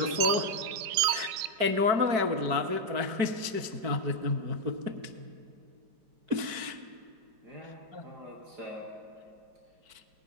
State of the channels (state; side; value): late; left; 4.6 ms